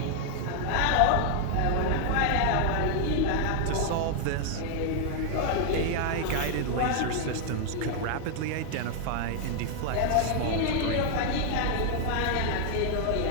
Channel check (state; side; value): different; both; correlation 0.00